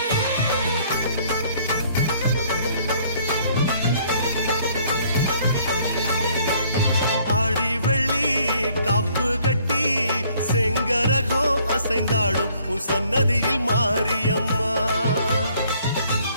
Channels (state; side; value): inverted; both; correlation -0.62